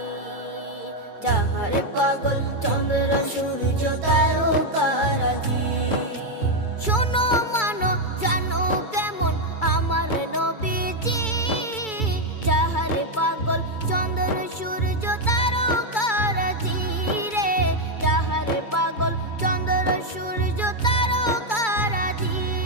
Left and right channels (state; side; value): late; right; 2.3 ms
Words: যাহার পাগল চন্দ্র সূর্য তারকারাজি। শোনো মানো জানো কেমন আমার নবীজি, যাহার পাগল চন্দ্র সূর্য তারকারাজি রে, যাহার পাগল চন্দ্র সূর্য তারকারাজি।